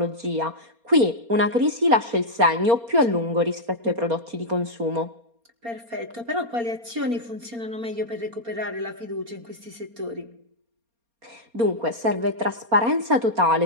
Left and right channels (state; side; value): late; left; 4.3 ms